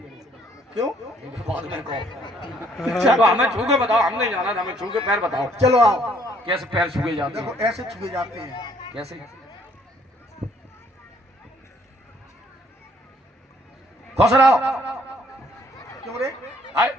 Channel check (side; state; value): both; normal; correlation 0.64